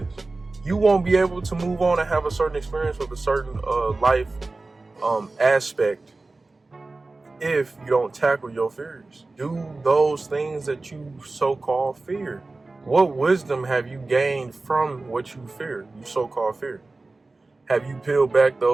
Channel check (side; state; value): left; quieter; 3.3 dB